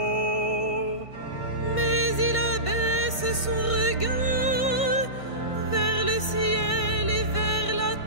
Mais il abaisse son regard vers le ciel et vers la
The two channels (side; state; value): right; late; 1.5 ms